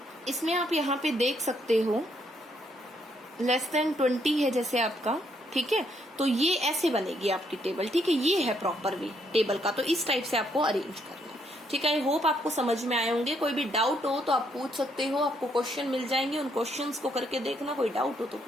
इसमें आप यहाँ पे देख सकते हो लेस देन 20 है जैसे आपका, ठीक है, तो ये ऐसे बनेगी आपकी टेबल, ठीक है। ये है प्रॉपर वे टेबल का, तो इस टाइप से आपको अरेंज करना है, ठीक है। आई होप आपको समझ में आए होंगे। कोई भी डाउट हो तो आप पूछ सकते हो, आपको क्वेश्चन मिल जाएंगे, उन क्वेश्चंस को करके देखना, कोई डाउट हो तो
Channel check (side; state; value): both; normal; correlation 0.73